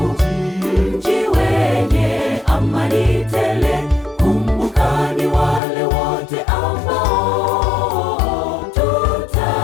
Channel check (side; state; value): right; drops out; at 5.6 s